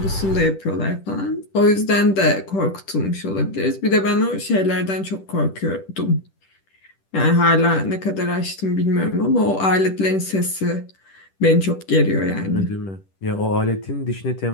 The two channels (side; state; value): right; late; 10 ms